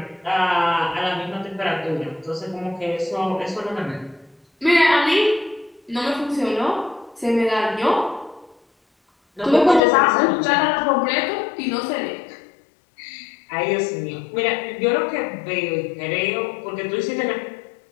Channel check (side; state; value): right; drops out; at 9.8 s